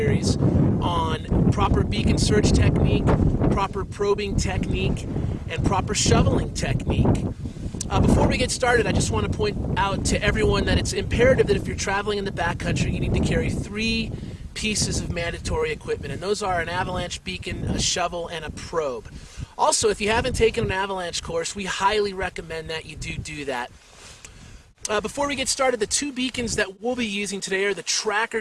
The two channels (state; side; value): identical; both; correlation 1.00